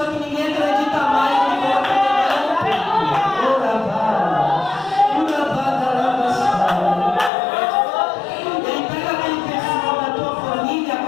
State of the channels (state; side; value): drops out; right; at 7.3 s